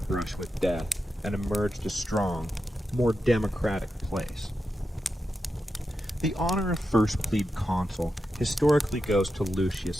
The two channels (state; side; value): normal; both; correlation 0.89